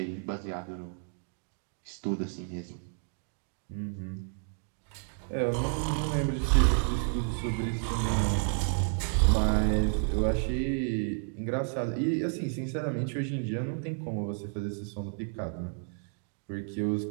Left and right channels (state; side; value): silent; left; 57 dB below the other